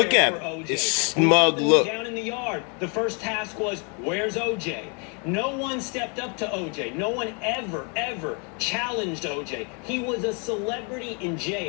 at him. His smug look. Down in the yard. The first task was, where's OJ? No one stepped up to OJ. No one ever challenged OJ. He was a celebrity in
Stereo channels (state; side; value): quieter; right; 36.1 dB